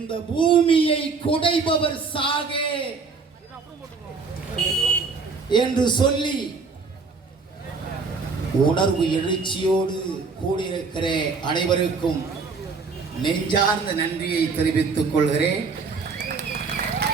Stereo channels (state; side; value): quieter; left; 4.7 dB